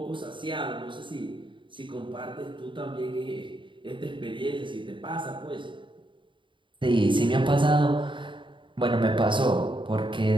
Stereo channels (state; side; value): late; left; 0.24 ms